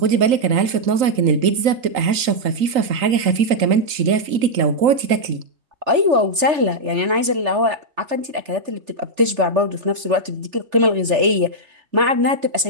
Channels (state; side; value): late; left; 3.4 ms